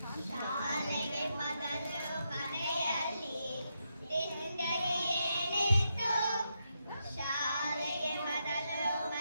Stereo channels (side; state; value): both; inverted; correlation -0.83